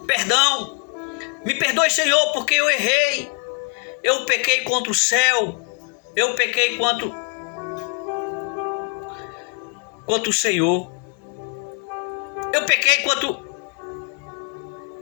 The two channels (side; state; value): right; quieter; 37.4 dB